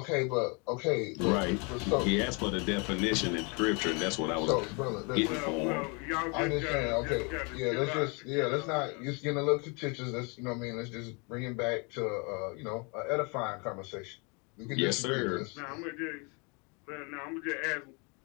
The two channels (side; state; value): right; quieter; 32.3 dB